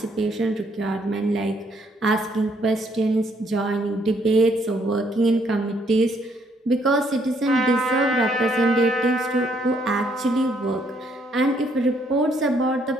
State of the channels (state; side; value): normal; both; correlation 0.69